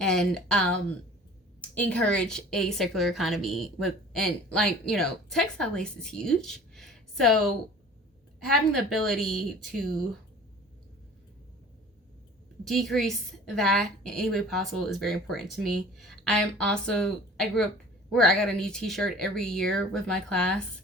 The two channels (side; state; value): both; normal; correlation 0.45